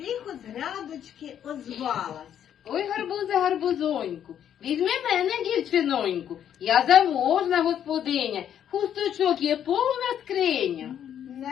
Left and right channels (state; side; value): quieter; right; 9.7 dB